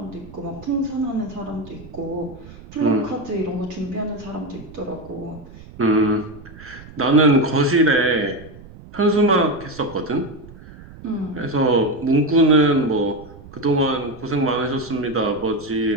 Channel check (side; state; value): right; noise; rumble, 18 dB below the sound